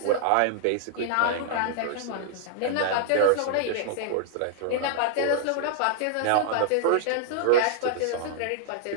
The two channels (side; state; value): both; different; correlation -0.01